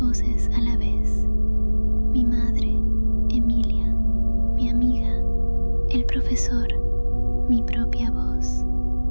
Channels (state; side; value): inverted; both; correlation -1.00